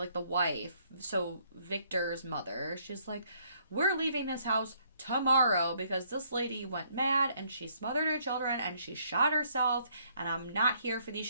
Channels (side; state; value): both; inverted; correlation -0.67